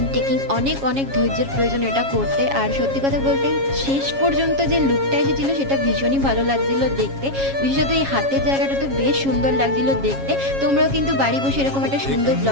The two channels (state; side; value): late; left; 7.3 ms